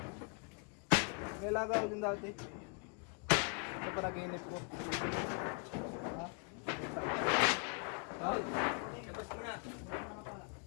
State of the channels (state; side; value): quieter; right; 36.6 dB